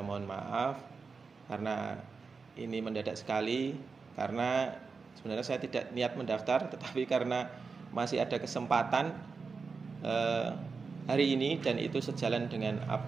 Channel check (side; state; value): left; quieter; 4.8 dB